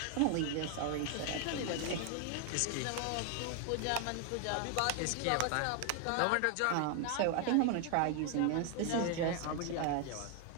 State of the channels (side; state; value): both; different; correlation 0.00